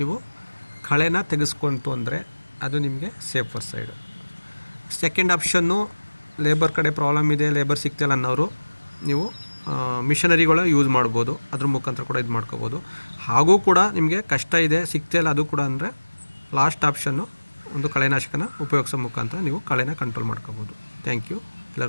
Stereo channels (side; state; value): both; inverted; correlation -1.00